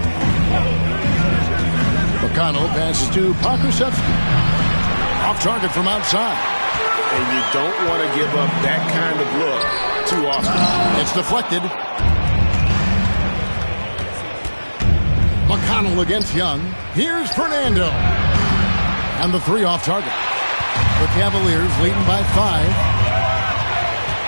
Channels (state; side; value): inverted; both; correlation -1.00